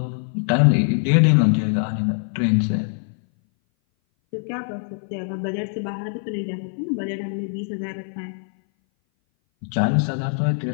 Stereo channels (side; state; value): right; silent; 59 dB below the other